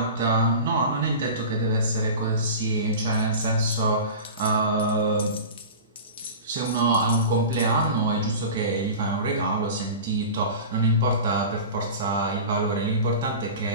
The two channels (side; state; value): both; inverted; correlation -0.33